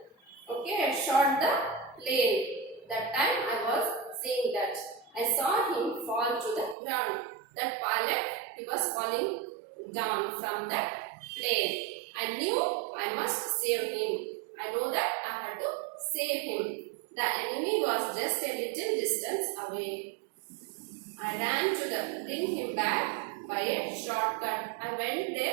okay, shot the plane. That time I was seeing that. I saw him fall to the ground. That pilot, he was falling down from that plane. I knew I must save him. I know that I had to save him. The enemy was just a little distance away. I ran to bring him back by a shortcut. I went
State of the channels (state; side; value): drops out; left; at 6.8 s